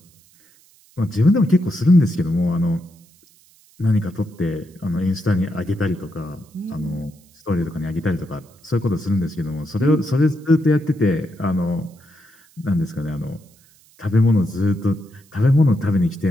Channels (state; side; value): noise; right; hiss, 30 dB below the sound